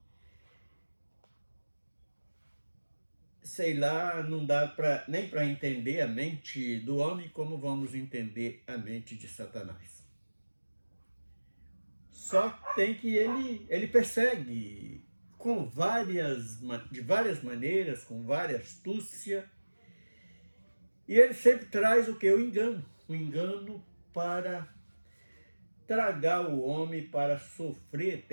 Sei lá, não dá nem para entender a mente do homem como vamos entender a mente de Satanás. Só tem que ele persegue de várias maneiras, com várias astúcia, e ele sempre traz o que? O engano para tragar o homem, para sofrer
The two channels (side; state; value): both; inverted; correlation -1.00